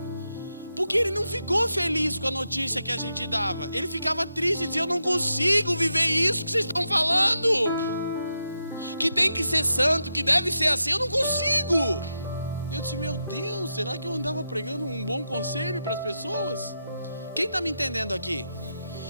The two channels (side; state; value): both; inverted; correlation -0.86